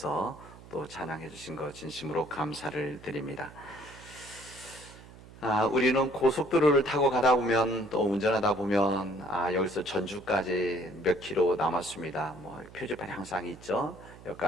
또 찬양해 주신 것 진심으로 감사를 드립니다. 우리는 고속도로를 타고 가다 보면 또 운전하다 보면 여기서 전주까지 몇 킬로 남았습니다. 뭐 표지판이 항상 있죠.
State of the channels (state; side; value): noise; right; hum, 19 dB below the sound